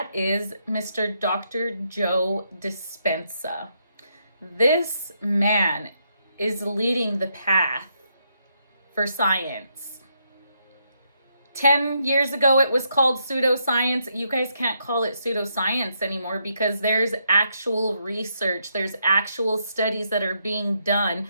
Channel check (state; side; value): inverted; both; correlation -0.78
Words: is Mr. Dr. Joe Dispenza. This man is leading the path for science. 10 years ago, it was called pseudoscience. You guys can't call it pseudoscience anymore because there's actual research. There's actual studies that are being done